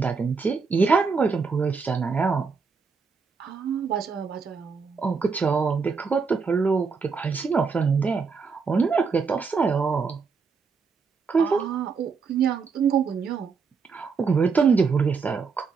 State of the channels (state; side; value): quieter; left; 5.2 dB